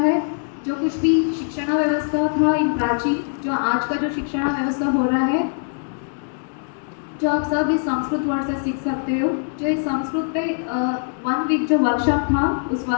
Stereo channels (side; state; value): right; silent; 64 dB below the other